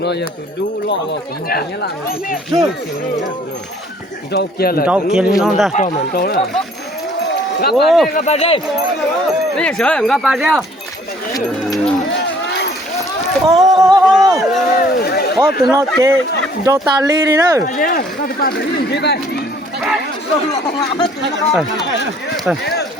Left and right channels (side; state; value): both; normal; correlation 0.58